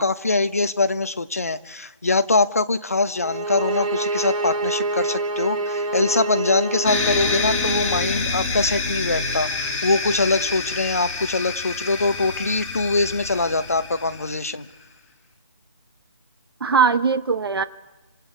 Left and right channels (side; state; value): both; inverted; correlation -0.49